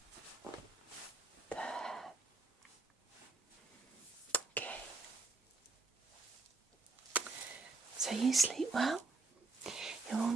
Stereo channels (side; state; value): left; quieter; 3.8 dB